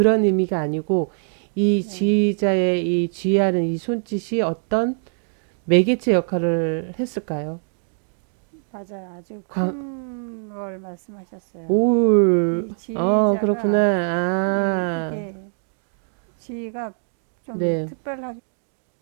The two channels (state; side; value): silent; left; digital silence